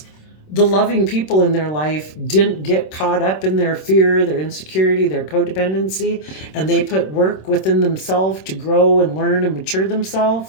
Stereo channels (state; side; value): late; right; 26 ms